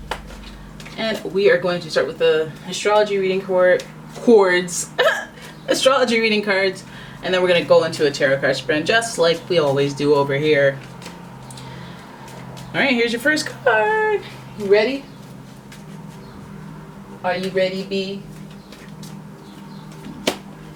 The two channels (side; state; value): both; identical; correlation 1.00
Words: And we are going to start with the astrology reading chords, astrology reading cards, and then we're going to go into a tarot card spread just like we always do over here. All right, here's your first card. You ready? Are you ready, B?